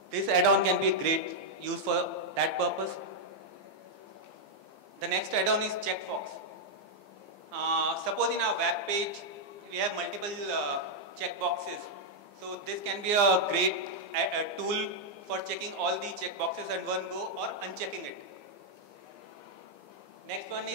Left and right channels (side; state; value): left; late; 15 ms